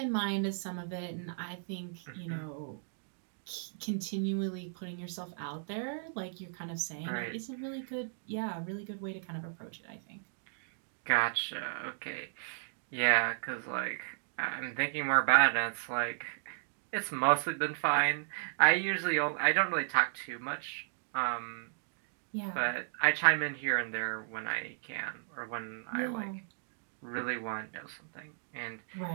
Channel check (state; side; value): silent; left; digital silence